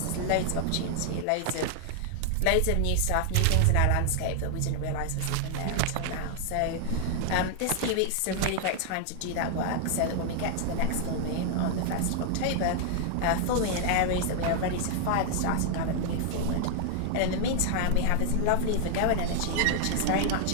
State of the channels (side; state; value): both; different; correlation 0.00